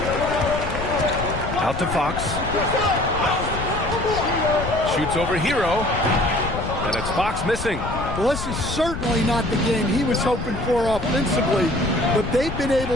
Out to Fox. Shoots over Hero. And it's Fox missing. Well, this is certainly not the game he was hoping for offensively, but they've been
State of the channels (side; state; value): left; noise; rumble, 7 dB below the sound